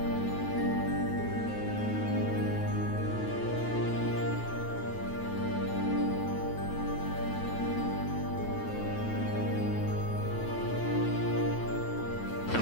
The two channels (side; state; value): right; late; 9.2 ms